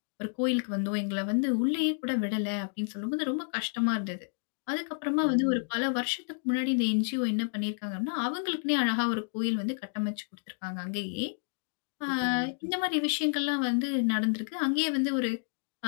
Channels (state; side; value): silent; right; digital silence